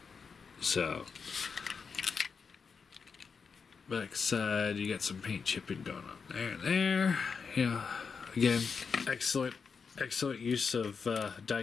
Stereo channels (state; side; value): quieter; right; 5.6 dB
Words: So, back side, you got some paint chipping going on there and there. Yeah. Again, excellent use of die